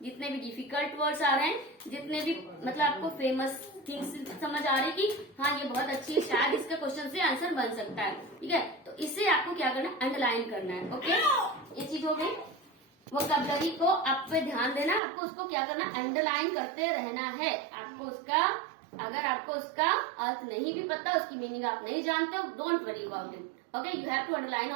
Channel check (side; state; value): left; drops out; at 15.0 s